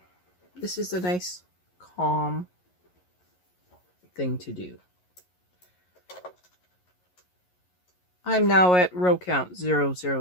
This is a nice, calm thing to do. I'm now at row count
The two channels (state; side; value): late; right; 11 ms